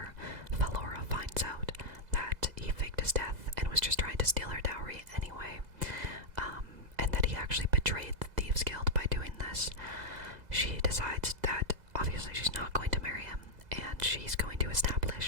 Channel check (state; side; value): late; left; 2.0 ms